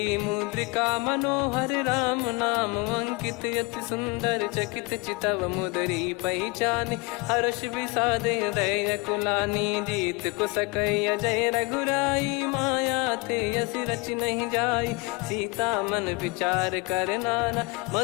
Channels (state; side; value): quieter; right; 26.9 dB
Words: मुद्रिका मनोहर। राम नाम अंकित अति सुंदर, चकित चितव मुदरी पहचान। हर्ष विषाद हृदय कुलानी, जीत को सकय जय रघुराई। माया थे यस रच नहीं जाई, सीता मन विचार कर नाना।